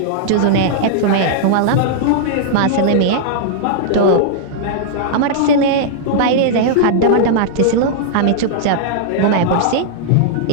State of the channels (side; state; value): both; different; correlation -0.02